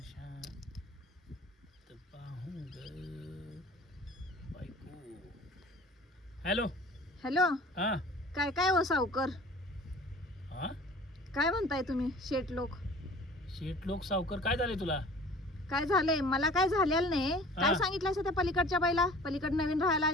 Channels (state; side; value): normal; both; correlation 0.45